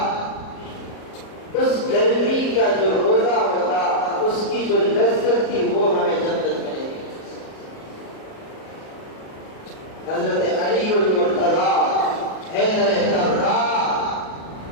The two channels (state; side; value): late; right; 37 ms